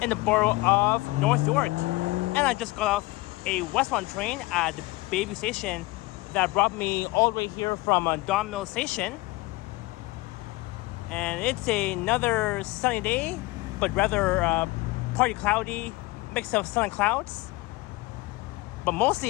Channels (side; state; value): right; quieter; 21.5 dB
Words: in the borough of North York. And I just got off a westbound train at the Bayview station that brought me all the way here from Don Mill Station. And it's another sunny day, but rather partly cloudy, mix of sun and clouds. But